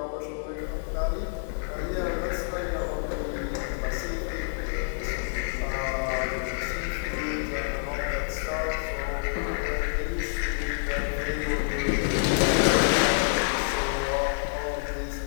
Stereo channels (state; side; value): silent; right; digital silence